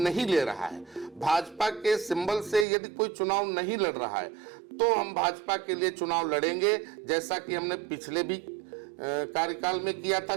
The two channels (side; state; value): left; drops out; at 2.7 s